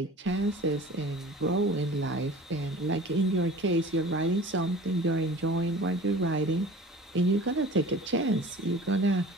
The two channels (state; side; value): normal; both; correlation 0.41